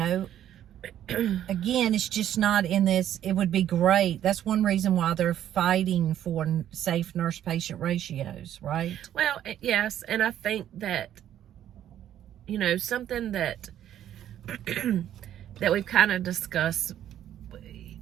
again, it's just not in this. It would be great. That's one reason why they're fighting for safe nurse-patient ratios, right? Well, yes. And I think that, you know, something that that we've kind of discussed,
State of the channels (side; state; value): left; quieter; 11.1 dB